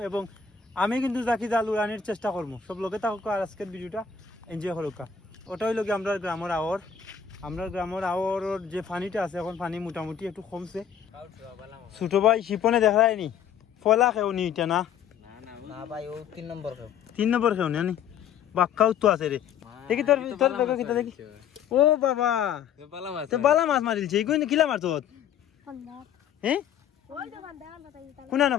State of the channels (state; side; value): quieter; right; 7.9 dB